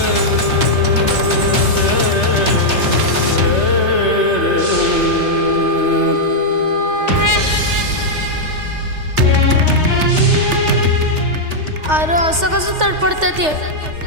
अरे असं कसं तडपडतात ये.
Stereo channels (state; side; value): late; left; 3.3 ms